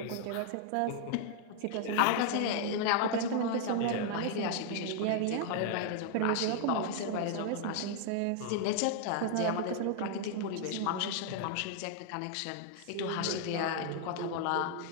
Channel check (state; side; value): different; both; correlation 0.00